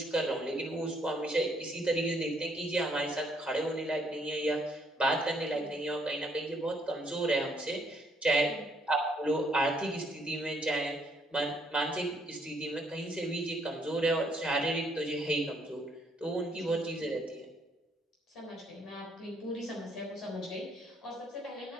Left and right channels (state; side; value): normal; both; correlation 0.69